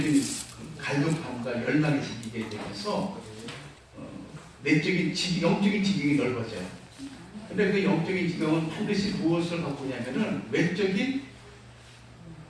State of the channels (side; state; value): both; identical; correlation 1.00